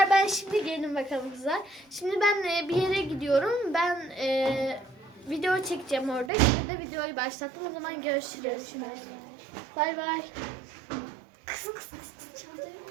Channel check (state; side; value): drops out; left; at 6.3 s